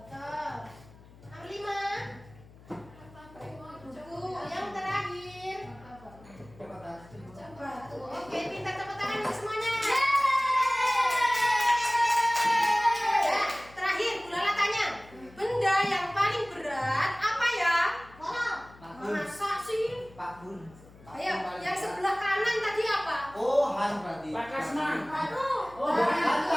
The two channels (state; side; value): noise; left; hum, 23 dB below the sound